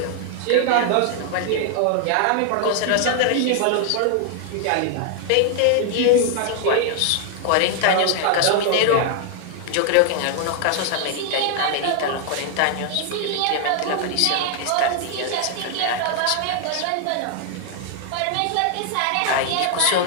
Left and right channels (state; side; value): different; both; correlation 0.00